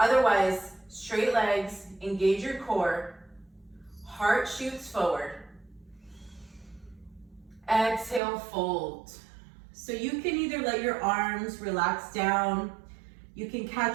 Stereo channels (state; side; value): drops out; left; at 8.2 s